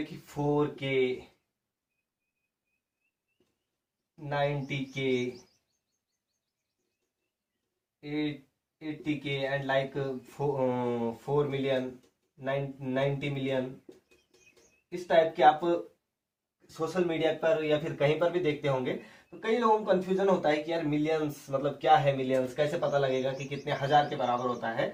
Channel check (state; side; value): identical; both; correlation 1.00